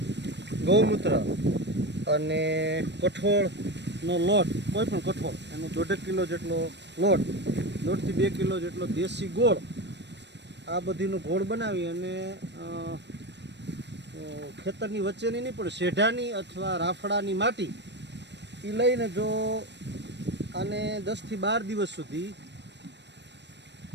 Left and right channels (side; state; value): left; late; 0.51 ms